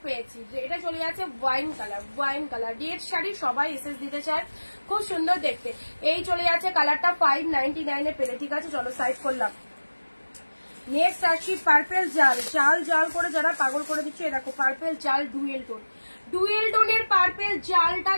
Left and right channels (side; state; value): both; inverted; correlation -1.00